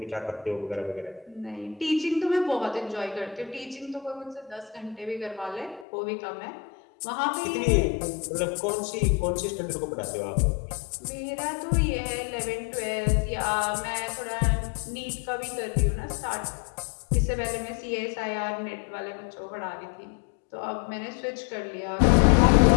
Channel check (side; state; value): right; drops out; at 5.9 s